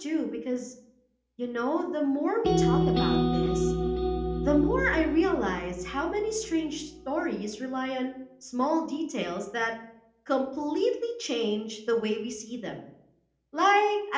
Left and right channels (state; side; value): identical; both; correlation 1.00